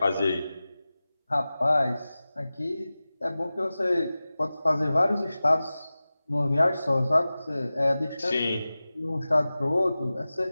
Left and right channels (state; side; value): inverted; both; correlation -0.96